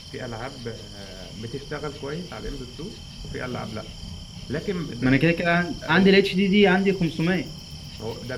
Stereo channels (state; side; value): identical; both; correlation 1.00